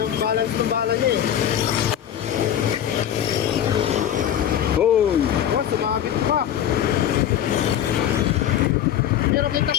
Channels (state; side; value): quieter; right; 10.3 dB